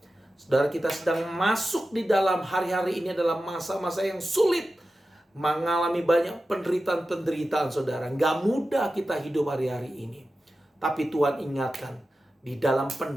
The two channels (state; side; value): normal; both; correlation 0.93